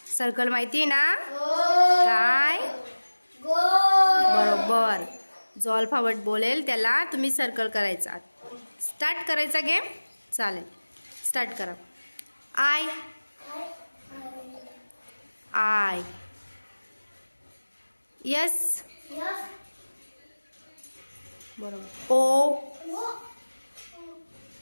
सर्कल माहिती ना? काय? बरोबर. जो अल्फाबेट बोलेल त्याला तुम्ही सर्कल करायचा. स्टार्ट करायचा गेम. चालेल, स्टार्ट करा. आय. I. Yes. बरोबर. O.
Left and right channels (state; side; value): inverted; both; correlation -1.00